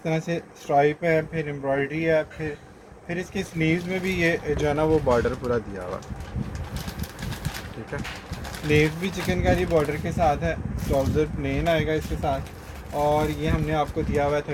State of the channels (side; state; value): both; identical; correlation 1.00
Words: तरह से स्ट्राइप है, फिर एम्ब्रॉयडरी है, फिर इसकी स्लीव्स में भी ये जो है ना वो बॉर्डर पूरा दिया हुआ, ठीक है। स्लीव्स भी चिकनकारी बॉर्डर के साथ है, ट्राउज़र प्लेन आएगा इसके साथ, और ये हमने आपको दिया हुआ है